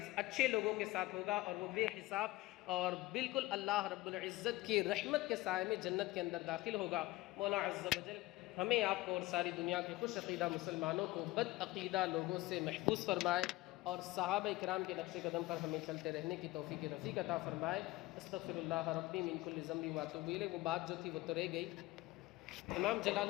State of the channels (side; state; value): right; quieter; 19.1 dB